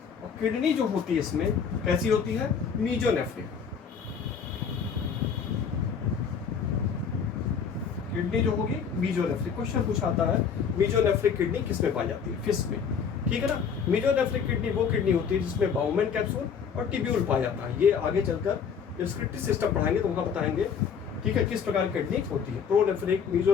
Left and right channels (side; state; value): right; quieter; 6.7 dB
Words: और किडनी जो होती है इसमें कैसी होती है, मीजोनेफ्रिक। किडनी जो होगी मीजोनेफ्रिक। क्वेश्चन पूछा आता है मीजोनेफ्रिक किडनी किसमें पाई जाती है, फिश में। ठीक है ना, मीजोनेफ्रिक किडनी वो किडनी होती है जिसमें बाउमेन कैप्सूल और टिब्यूल पाया जाता है। ये आगे चलकर डिस्क्रिप्टिव सिस्टम पढ़ाएंगे तो वहां बताएंगे, ठीक है, किस प्रकार की किडनी होती है। प्रोनेफ्रिक,